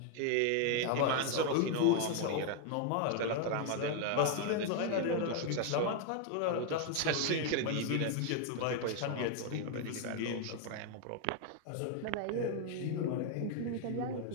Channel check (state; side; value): different; both; correlation 0.00